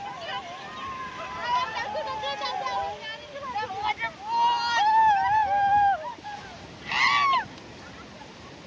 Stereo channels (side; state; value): both; identical; correlation 1.00